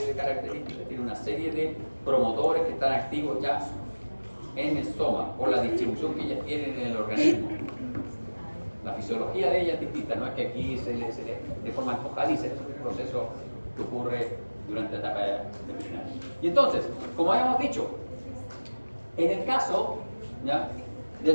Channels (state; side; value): inverted; both; correlation -1.00